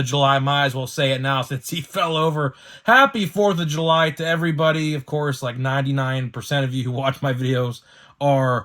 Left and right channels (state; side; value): identical; both; correlation 1.00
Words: July. Might as well say it now since he fell over. Happy 4th of July to everybody. Of course, like 99% of you who watch my videos